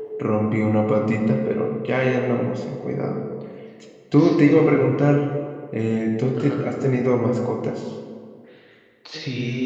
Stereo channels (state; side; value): identical; both; correlation 1.00